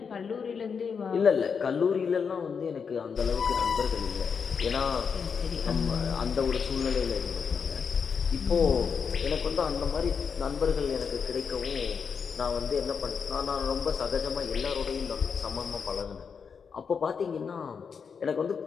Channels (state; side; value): quieter; right; 6.1 dB